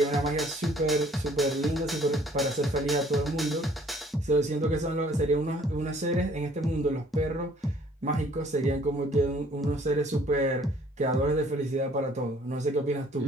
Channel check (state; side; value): normal; both; correlation 0.58